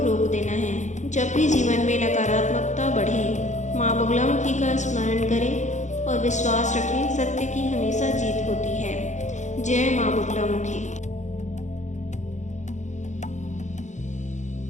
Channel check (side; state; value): right; late; 0.35 ms